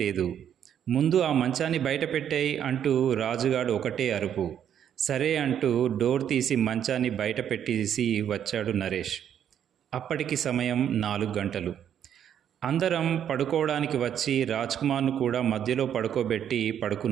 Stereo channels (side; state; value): left; quieter; 9.4 dB